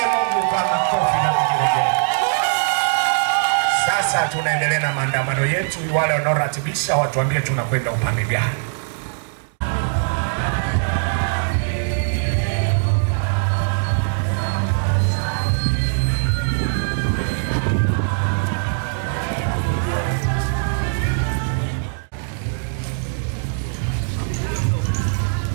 Mungu kwa makofi na vigelegele. Sasa tunaendelea na maandamano yetu. Wale wanaoratibisha watuambie tunakwenda upande gani.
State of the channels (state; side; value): silent; left; digital silence